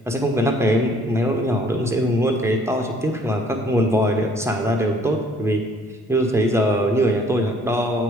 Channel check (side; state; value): both; normal; correlation 0.59